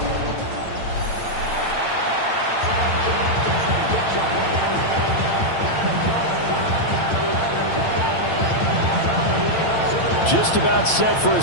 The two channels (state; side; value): late; right; 8.9 ms